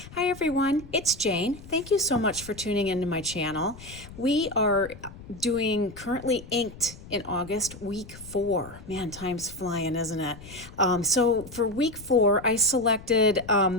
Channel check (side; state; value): left; noise; rumble, 17 dB below the sound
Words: Hi everyone, it's Jane. Thank you so much for tuning into my channel. We are doing currently inked in August, week 4. Man, time's flying, isn't it? So for week 4, I selected